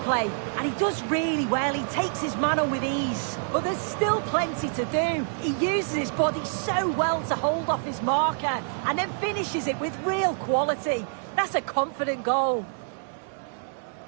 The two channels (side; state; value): left; silent; 60 dB below the other